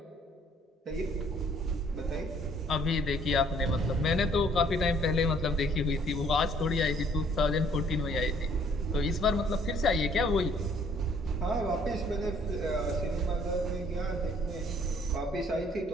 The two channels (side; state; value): both; normal; correlation 0.61